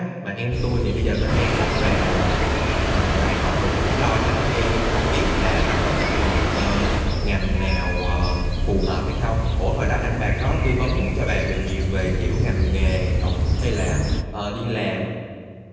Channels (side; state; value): both; identical; correlation 1.00